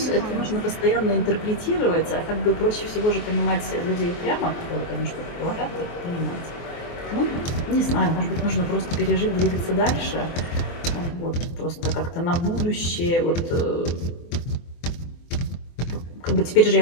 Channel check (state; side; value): late; right; 24 ms